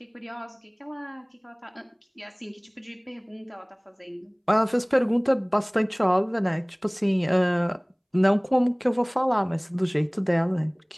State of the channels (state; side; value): identical; both; correlation 1.00